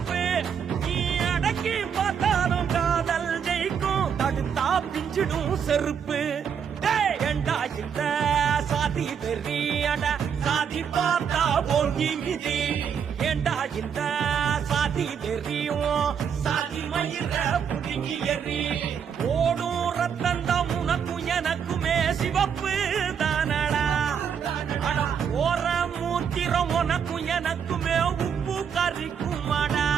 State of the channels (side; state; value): left; quieter; 7.5 dB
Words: நீ அடக்கி பார்த்தாலும் காதல் ஜெயிக்கும் தடுத்தா பிஞ்சிடும் செருப்பு ஏண்டா இந்த சாதி வெறியட சாதி பார்த்தா பொங்கி மிதி ஏண்டா இந்த சாதி வெறியும் சாதி மயிர புடுங்கி எறி ஓடும் ரத்தந்தம் உனக்கும் எனக்குமே சிவப்பு தானடா அட போற மூத்திரம் உனக்கும் எனக்குமே உப்பு கறிக்குமாடா